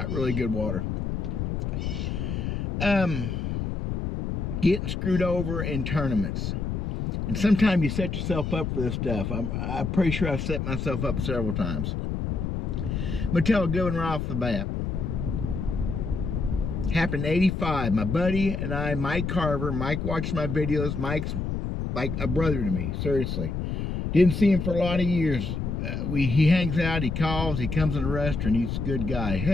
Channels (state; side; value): noise; left; rumble, 2 dB below the sound